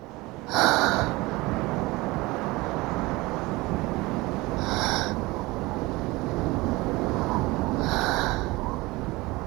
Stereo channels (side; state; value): left; quieter; 21.8 dB